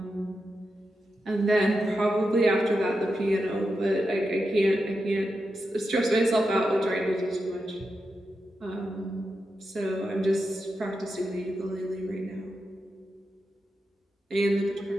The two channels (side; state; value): both; normal; correlation 0.88